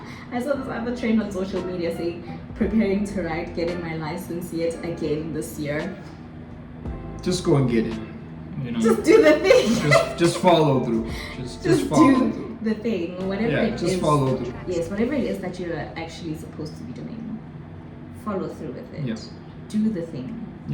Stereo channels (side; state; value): both; identical; correlation 1.00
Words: I saw this other trend on social media saying, preparing to write, getting my license yet again this year. Just go and get it. You know, just do the thing. Just follow through. Just follow through. The thing, whatever it is. Just follow through. Yes, whatever it is that you're actually supposed to be doing, follow through with it. Do the thing.